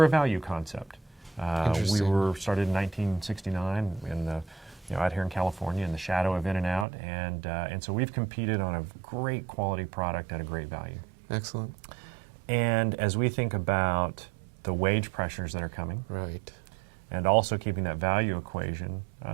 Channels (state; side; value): drops out; left; at 6.9 s